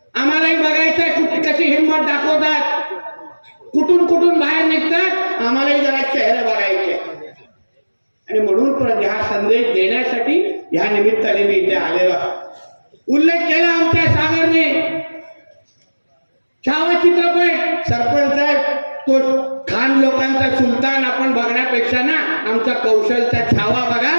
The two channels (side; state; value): both; inverted; correlation -1.00